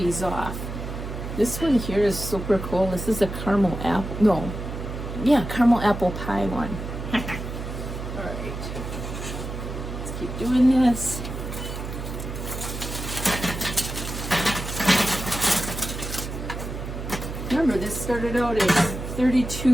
off. This one here is super cool. This is a caramel apple, no, yeah, caramel apple pie one. All right, let's keep doing this. Remember, this started out as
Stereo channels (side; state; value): right; noise; hum, 7 dB below the sound